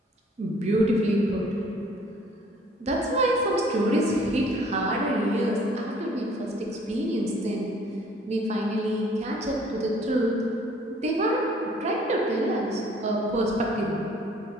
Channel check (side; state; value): both; normal; correlation 0.57